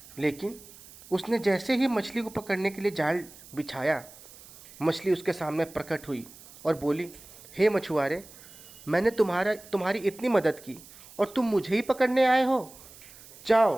लेकिन उसने जैसे ही मछली को पकड़ने के लिए जाल बिछाया, मछली उसके सामने प्रकट हुई और बोली, हे मछुआरे, मैंने तुम्हारी इतनी मदद की और तुम मुझे ही पकड़ने आए हो। जाओ,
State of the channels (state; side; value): noise; right; hiss, 20 dB below the sound